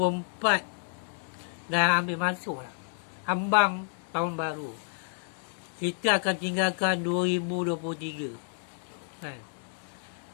dah ambil masuk lah. Ambang tahun baru. Kita akan tinggalkan 2023.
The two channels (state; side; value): silent; right; 57 dB below the other